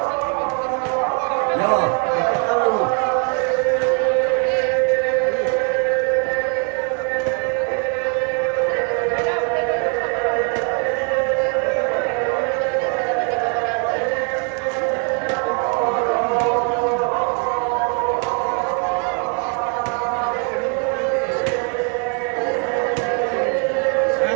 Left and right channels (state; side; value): quieter; left; 39.5 dB